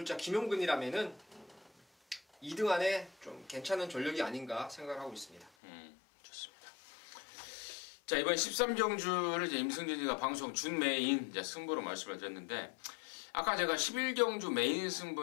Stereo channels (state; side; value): drops out; right; at 5.5 s